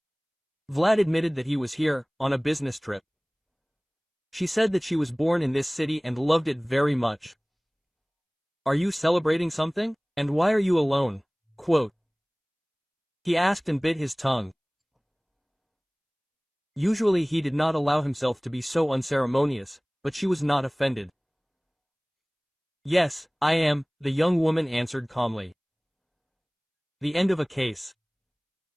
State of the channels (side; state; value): both; identical; correlation 1.00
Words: Vlad admitted that he was here, on a business trip. She said that she was born in this city and loved it very much. "Are you celebrating something? And why are you alone?" Quote. He asked and bit his tongue. Usually he did not allow himself to be so unceremonious, but she was not offended. "Yes, I am," the young woman answered calmly. The end of a case.